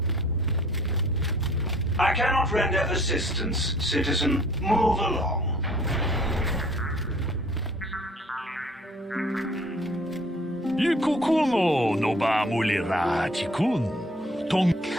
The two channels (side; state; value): both; normal; correlation 0.55